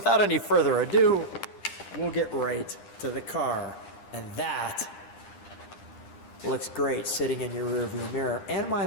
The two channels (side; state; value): right; late; 9.9 ms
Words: any further ado, we'll get right to the car. And that looks great sitting in your rearview mirror. And might